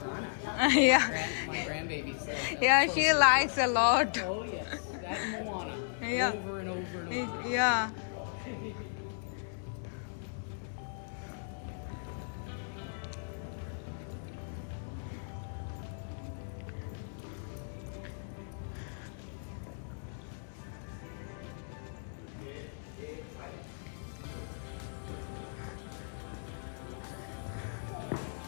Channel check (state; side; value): silent; right; digital silence